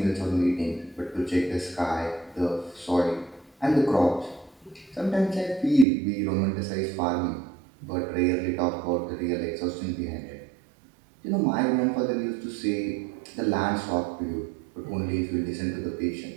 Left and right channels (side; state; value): left; drops out; at 5.9 s